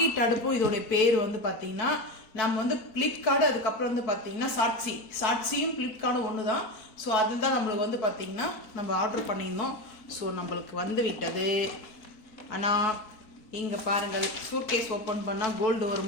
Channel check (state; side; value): late; right; 4.2 ms